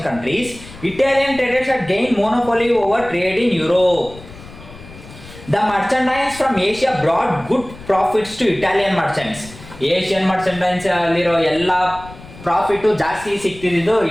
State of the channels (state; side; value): noise; left; rumble, 18 dB below the sound